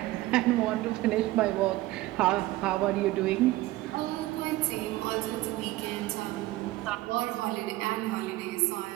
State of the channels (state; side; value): quieter; left; 17.7 dB